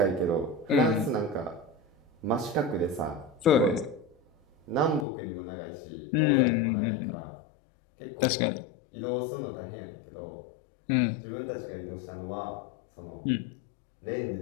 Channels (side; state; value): right; drops out; at 5.1 s